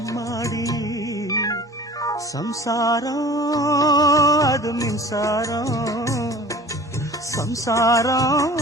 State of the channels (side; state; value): both; normal; correlation 0.44